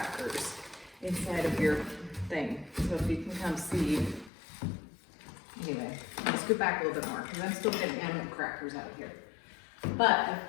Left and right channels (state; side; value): drops out; right; at 4.3 s